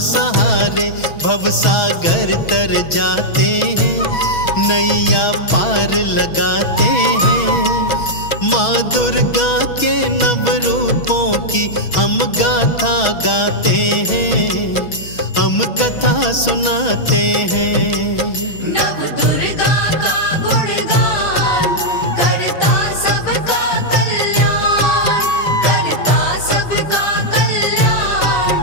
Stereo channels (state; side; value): late; right; 6.2 ms